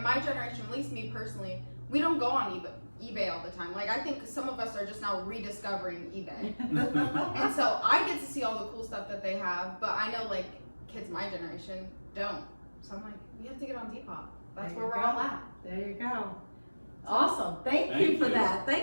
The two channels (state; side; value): inverted; both; correlation -1.00